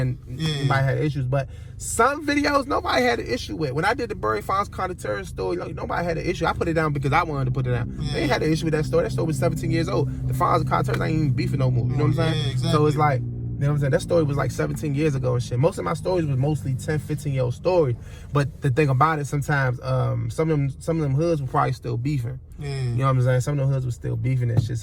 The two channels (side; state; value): both; identical; correlation 1.00